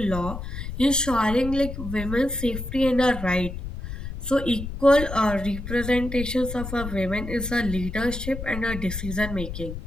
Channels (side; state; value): left; noise; rumble, 7 dB below the sound